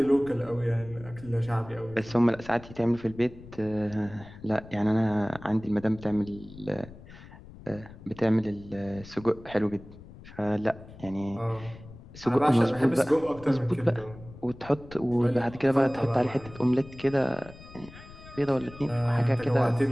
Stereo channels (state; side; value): noise; left; rumble, 18 dB below the sound